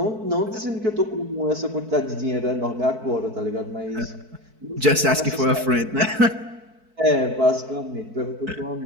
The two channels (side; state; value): left; late; 4.6 ms